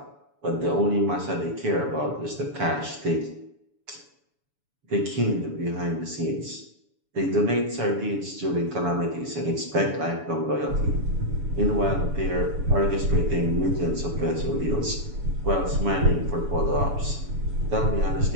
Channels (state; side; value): late; left; 7.0 ms